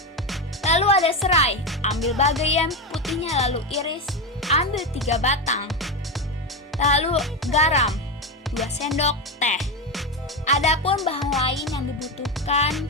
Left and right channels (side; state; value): both; normal; correlation 0.13